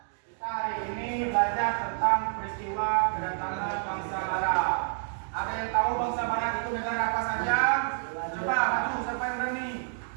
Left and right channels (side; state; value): left; silent; digital silence